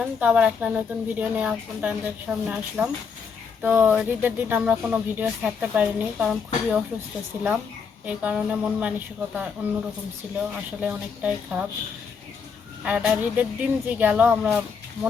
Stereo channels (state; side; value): quieter; right; 5.9 dB